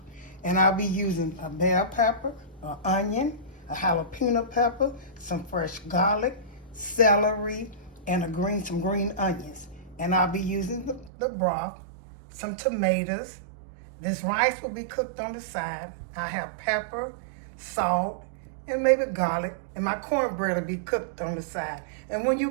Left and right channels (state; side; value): drops out; left; at 11.1 s